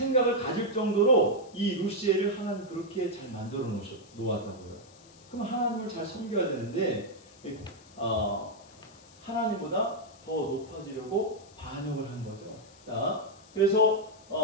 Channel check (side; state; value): left; noise; hiss, 24 dB below the sound